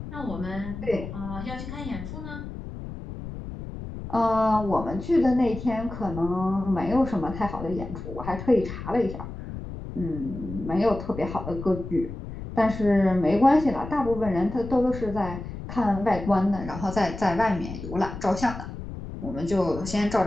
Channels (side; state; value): left; noise; rumble, 9 dB below the sound